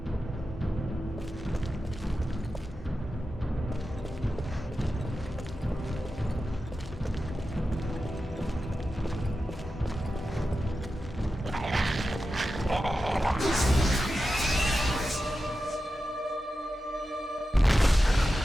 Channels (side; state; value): both; normal; correlation 0.92